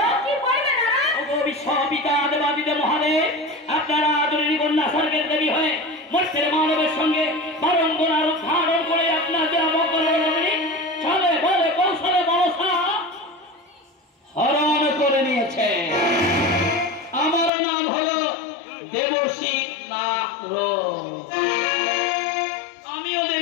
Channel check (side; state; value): right; drops out; at 17.5 s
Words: কি বলবে নারদ? ওগো বিশ্বপিতা দেবাদিদেব মহাদেব, আপনারা আদরণী কন্যা স্বর্গের দেবী হয়ে মর্তের মানবের সঙ্গে বারম্বার ধারণ করে আপনাদের চলে বলে কৌশলে মনসা হরণ করে নিয়েছে। আমার নাম হলো দেবশ্রী নাগর। আমিও